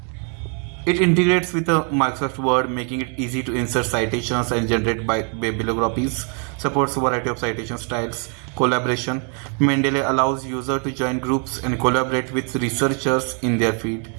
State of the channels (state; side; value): quieter; left; 39.5 dB